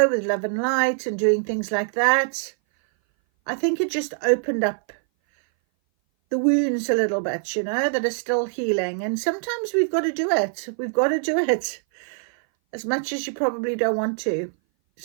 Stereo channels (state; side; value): silent; left; 59 dB below the other